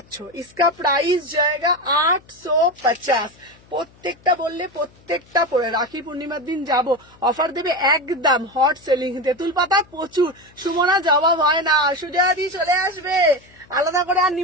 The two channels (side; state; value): left; noise; hum, 28 dB below the sound